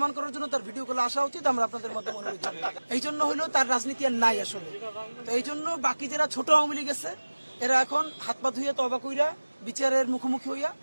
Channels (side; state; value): both; inverted; correlation -1.00